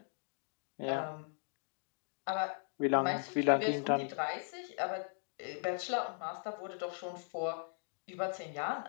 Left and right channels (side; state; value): right; silent; 52 dB below the other